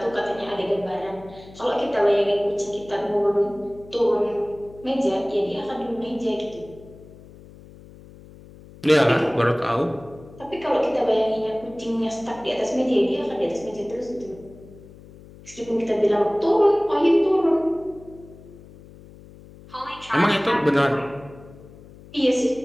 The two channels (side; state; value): left; noise; hum, 20 dB below the sound